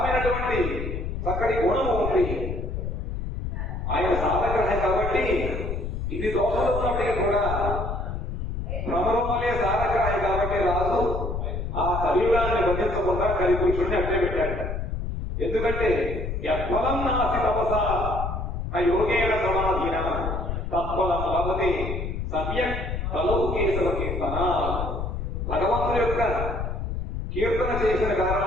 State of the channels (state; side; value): noise; left; rumble, 4 dB below the sound